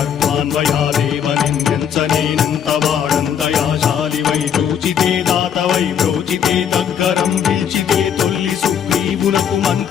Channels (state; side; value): quieter; right; 8.5 dB